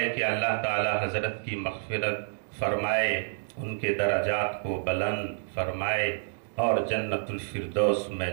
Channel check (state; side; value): silent; left; digital silence